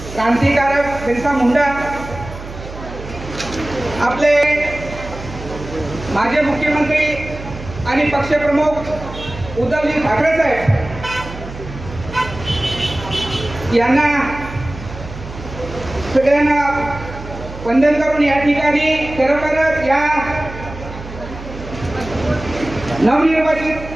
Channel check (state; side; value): noise; right; hum, 12 dB below the sound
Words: क्रांतिकारक बिरसा मुंडा, आपले माजी मुख्यमंत्री आणि पक्षप्रमुख उद्धवजी ठाकरे साहेब यांना सगळ्यांना वंदन करून या ठिकाणी खरोखरच या नवनिर्वाचित